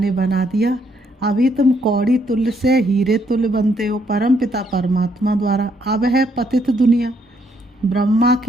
बना दिया। अभी तुम कौड़ी तुल्य से हीरे तुल्य बनते हो परम पिता परमात्मा द्वारा। अब है पतित दुनिया, ब्रह्मा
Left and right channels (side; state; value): both; normal; correlation 0.71